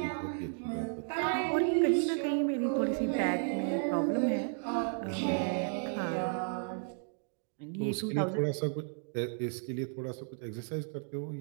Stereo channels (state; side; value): silent; left; 55 dB below the other